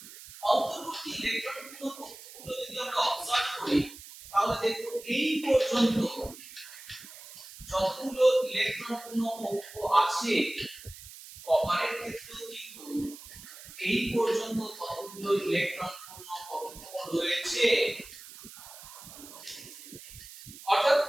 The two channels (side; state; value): right; noise; hiss, 16 dB below the sound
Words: অন্তর্বর্তী ইলেকট্রন পূর্ণ কক্ষগুলো যদি আমরা অবজার্ভ করি তাহলে দেখো এই পর্যন্ত যতগুলো ইলেকট্রন পূর্ণ কক্ষ আছে, কপারের ক্ষেত্রেও কিন্তু এই পর্যন্ত ততগুলো ইলেকট্রন পূর্ণ কক্ষ রয়েছে। অর্থাৎ